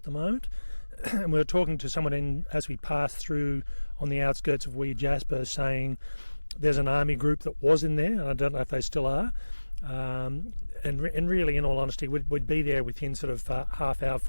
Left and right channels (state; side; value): inverted; both; correlation -1.00